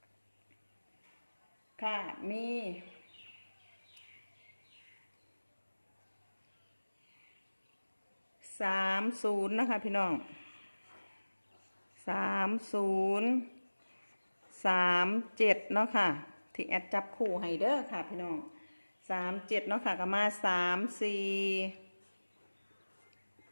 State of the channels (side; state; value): both; inverted; correlation -1.00